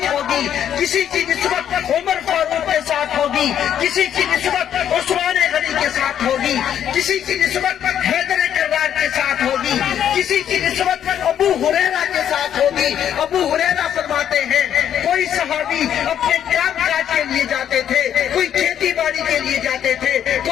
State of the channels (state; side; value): quieter; right; 9.7 dB